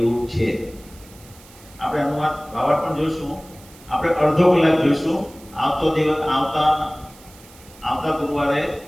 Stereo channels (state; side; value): noise; right; hiss, 23 dB below the sound